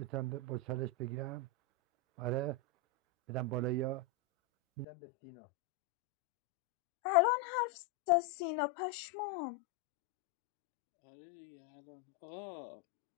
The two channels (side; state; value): right; drops out; at 4.9 s